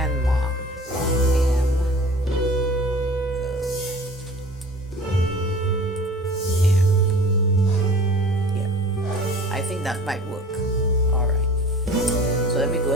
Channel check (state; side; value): normal; both; correlation 0.44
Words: mom. I think that might work. All right. So let me go